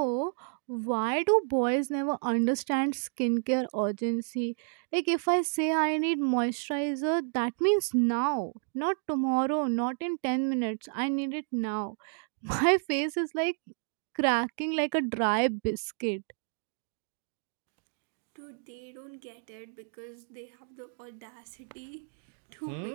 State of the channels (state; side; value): silent; left; 57 dB below the other